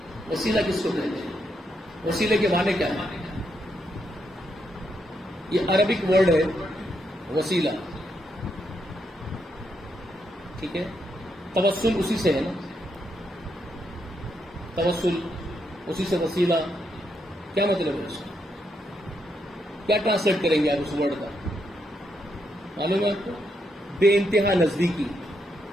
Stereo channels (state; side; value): normal; both; correlation 0.79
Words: وسیلہ کس کو کہتے ہیں؟ وسیلے کے معنی کیا ہے؟ یہ عربک ورڈ ہے وسیلہ، ٹھیک ہے؟ توسل اسی سے ہے نا، توسل اسی سے، وسیلہ کیا مطلب ہے اس کا؟ کیا ٹرانسلیٹ کریں گے آپ اس ورڈ کا؟ معلوم ہے آپ کو؟ بے انتہا نزدیکی،